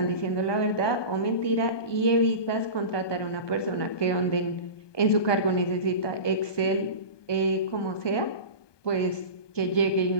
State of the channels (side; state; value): right; late; 1.2 ms